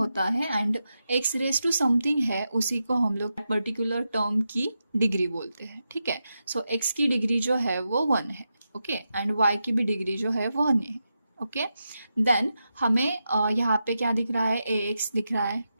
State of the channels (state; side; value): inverted; both; correlation -0.88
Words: है। And x raise to something है, उसी को हम लोग पर्टिकुलर टर्म की डिग्री बोलते हैं, ठीक है। सो एक्स की डिग्री जो है वो 1 है, ओके। एंड वाई की भी डिग्री जो है वो 1 है, ओके। देन हमें यहाँ पे क्या दिख रहा है, ए एक्स दिख रहा है,